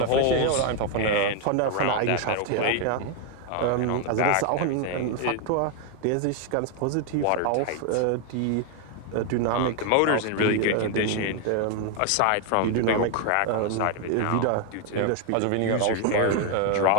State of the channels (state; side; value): different; both; correlation 0.01